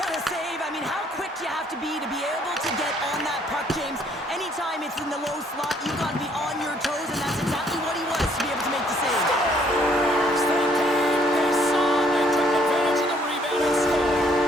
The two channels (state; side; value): normal; both; correlation 0.64